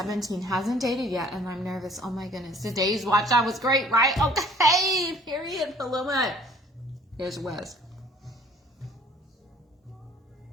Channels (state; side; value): normal; both; correlation 0.55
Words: hasn't dated yet, and I'm nervous. Oh my goodness. Today's watch out was great, right? Okay, period. Paloma. Here's Wes.